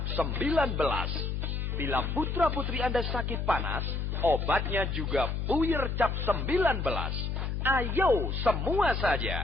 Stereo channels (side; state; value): left; noise; hum, 2 dB below the sound